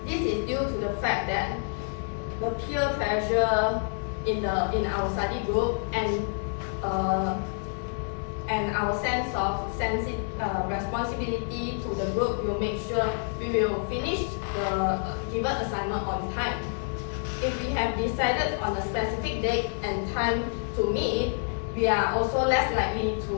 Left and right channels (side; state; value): right; silent; 59 dB below the other